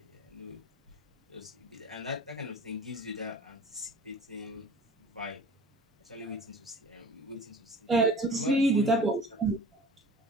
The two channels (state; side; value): normal; both; correlation 0.43